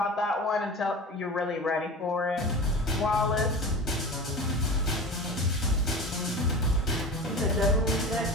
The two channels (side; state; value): both; normal; correlation 0.32